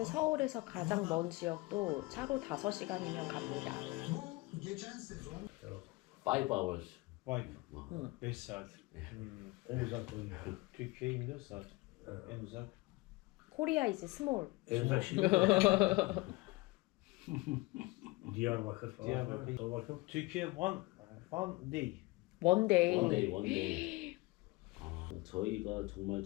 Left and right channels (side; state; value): right; quieter; 22.5 dB